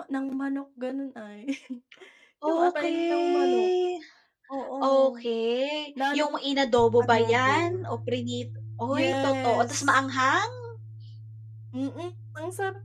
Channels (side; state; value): both; identical; correlation 1.00